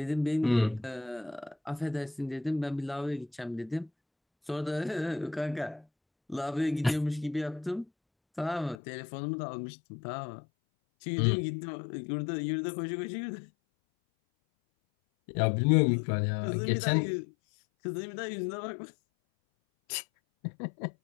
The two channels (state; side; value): drops out; right; at 8.8 s